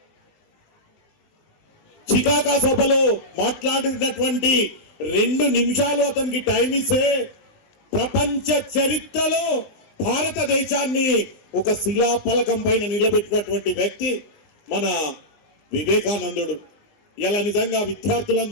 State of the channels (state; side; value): late; right; 20 ms